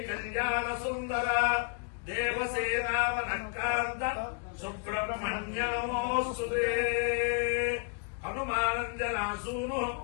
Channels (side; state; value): right; quieter; 36.2 dB